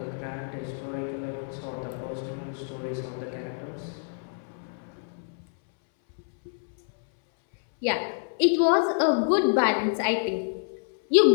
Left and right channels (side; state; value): right; silent; 60 dB below the other